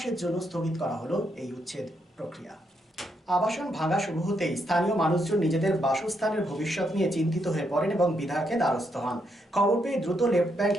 জন্য স্থগিত করা হলো এই উচ্ছেদ প্রক্রিয়া। আবাসন ভাঙা শুরু হতেই স্থানীয় মানুষজন নিজেদের বাসস্থানের ভবিষ্যৎ নিয়ে চিন্তিত হয়ে পড়েন এবং বিধায়কের দ্বারস্থ হন। খবর পেয়ে দ্রুত লেফট ব্যাংক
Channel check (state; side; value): normal; both; correlation 0.78